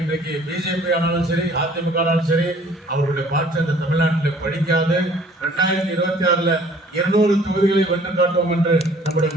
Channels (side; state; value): both; normal; correlation 0.55